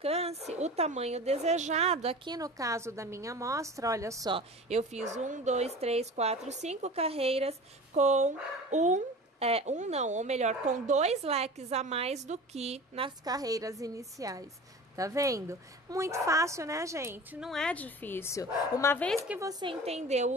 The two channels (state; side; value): normal; both; correlation 0.37